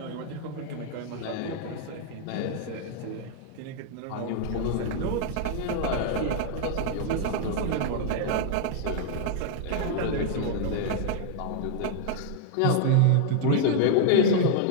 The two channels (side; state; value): both; different; correlation 0.00